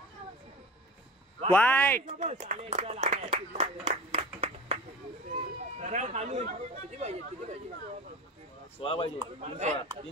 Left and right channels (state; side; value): normal; both; correlation 0.34